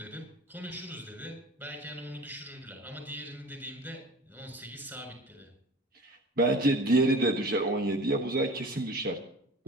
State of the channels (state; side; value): normal; both; correlation 0.40